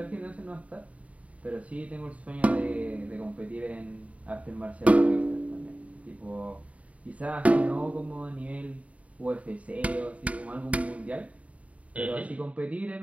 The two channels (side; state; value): left; late; 0.067 ms